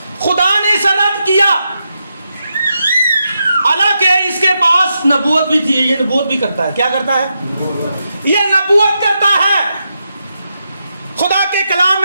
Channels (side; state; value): both; inverted; correlation -0.85